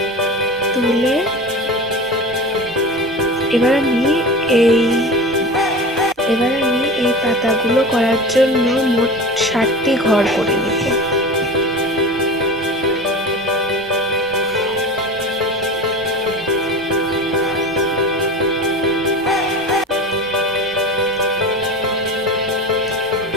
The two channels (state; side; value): normal; both; correlation 0.32